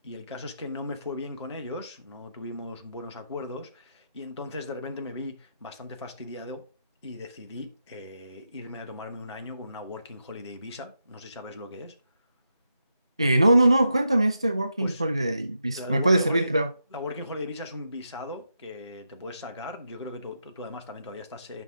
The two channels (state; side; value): inverted; both; correlation -0.85